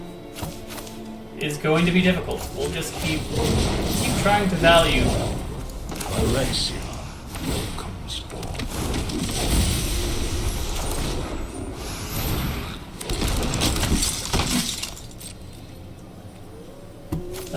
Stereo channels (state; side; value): identical; both; correlation 1.00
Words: is going to be difficult. We'll just keep trying to value. Alexia comes forth.